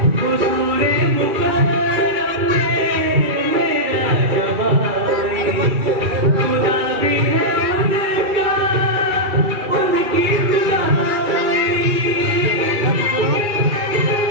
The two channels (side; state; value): left; late; 2.3 ms